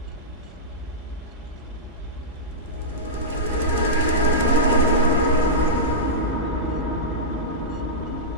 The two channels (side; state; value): both; normal; correlation -0.12